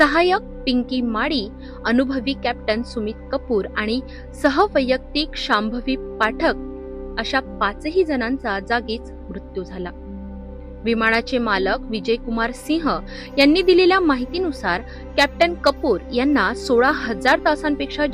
पिंकी माडी, अनुभवी कॅप्टन सुमित कपूर आणि सहवैयक्तिक शांभवी पाठक अशा 5ही जणांचा जागीच मृत्यू झाला। विमानाचे मालक विजय कुमार सिंह यांनी दिलेल्या माहितीनुसार कॅप्टन कपूर यांना 16,000 तासांपेक्षा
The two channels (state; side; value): identical; both; correlation 1.00